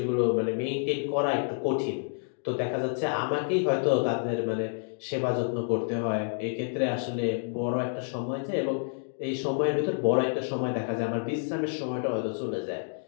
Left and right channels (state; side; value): silent; right; digital silence